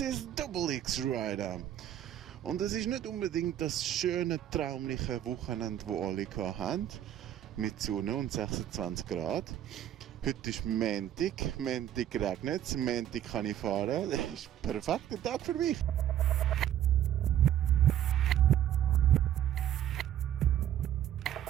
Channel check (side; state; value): left; quieter; 11.2 dB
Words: is Double X Rider. Und es ist nicht unbedingt das schöne, traumliche Wochenende, das alle hatten, mit Sonne und 26 Grad. Heute ist Montag regnet es, Montag kann ich fahren. Das ist ein perfekter Tag für mich.